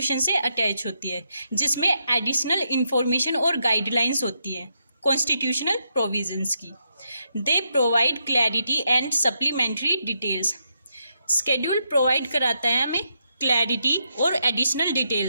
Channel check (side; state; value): both; inverted; correlation -0.80